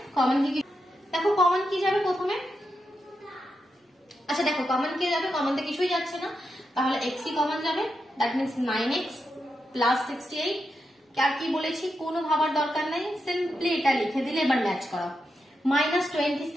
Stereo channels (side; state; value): both; normal; correlation 0.86